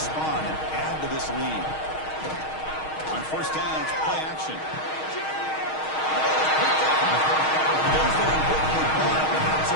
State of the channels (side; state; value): right; late; 6.4 ms